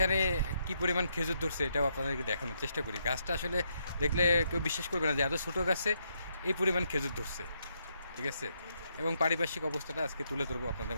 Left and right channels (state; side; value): inverted; both; correlation -0.77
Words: কি পরিমাণ খেজুর ধরছে এটাও আপনাদেরকে দেখানোর চেষ্টা করি। গাছটা আসলে দেখলে কেউ বিশ্বাস করবে না যে এত ছোটো গাছে এই পরিমাণ খেজুর ধরছে, ঠিক আছে। এবং পারিপার্শ্বিক অবস্থাটা আজকে তুলে ধরবো আপনাদের